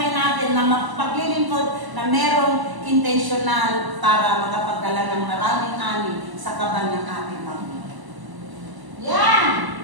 natin na mapaglilingkod na merong intentional para makapagdala ng maraming ani sa kaban ng ating Panginoon. Yan!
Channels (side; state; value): left; late; 1.0 ms